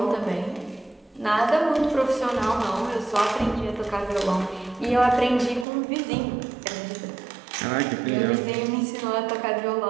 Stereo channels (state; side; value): drops out; left; at 5.7 s